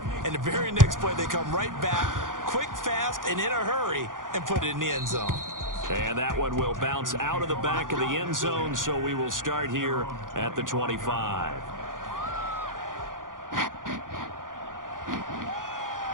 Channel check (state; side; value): late; left; 0.89 ms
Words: And the very next play, they come right back, quick, fast, and in a hurry, and put it in the end zone. And that one will bounce out of the back of the end zone, so we will start here at the 25.